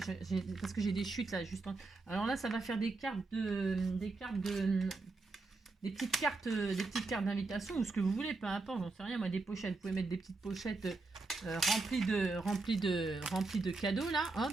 Parce que j'ai des chutes là, juste en... Alors là, ça va faire des petites cartes d'invitation ou ce que vous voulez, peu importe, j'en sais rien. Moi, des pochettes. Vous pouvez mettre des petites pochettes remplies de cadeaux là. Hop.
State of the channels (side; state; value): left; quieter; 3.6 dB